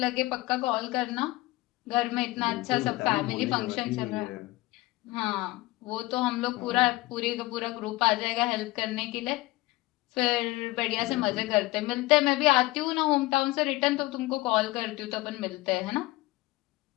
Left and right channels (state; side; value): quieter; right; 20.1 dB